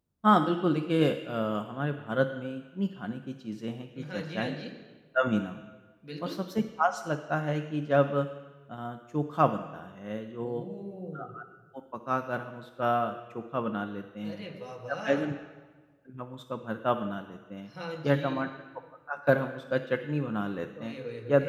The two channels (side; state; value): both; identical; correlation 1.00